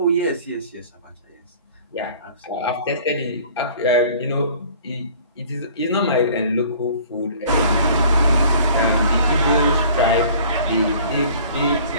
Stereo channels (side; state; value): both; inverted; correlation -0.50